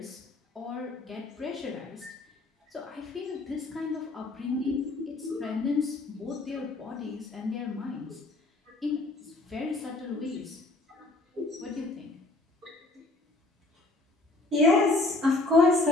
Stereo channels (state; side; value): quieter; right; 3.0 dB